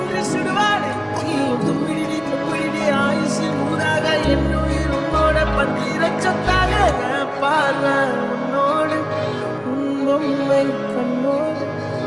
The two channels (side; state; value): both; identical; correlation 1.00